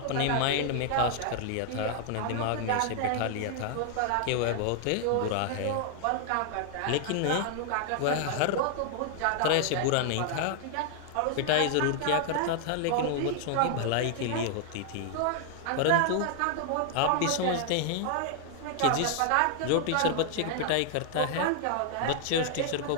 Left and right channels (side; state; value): both; different; correlation 0.00